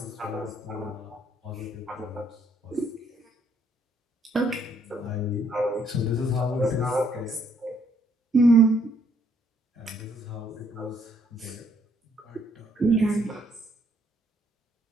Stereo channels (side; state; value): both; normal; correlation 0.68